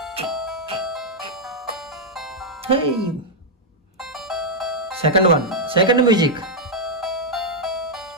Second one, second music.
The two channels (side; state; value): both; normal; correlation -0.04